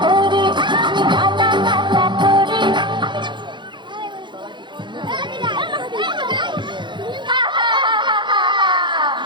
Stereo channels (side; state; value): left; late; 0.23 ms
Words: করি, আমি ডানা কাটা করি।